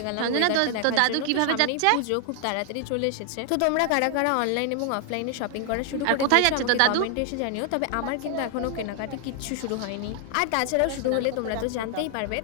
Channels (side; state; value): both; different; correlation 0.00